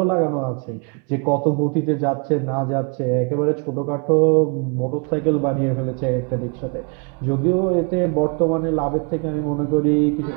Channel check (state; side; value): quieter; left; 35.4 dB